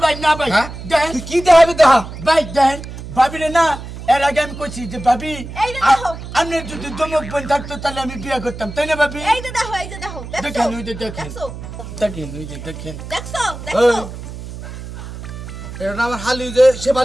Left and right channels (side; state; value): right; noise; hum, 11 dB below the sound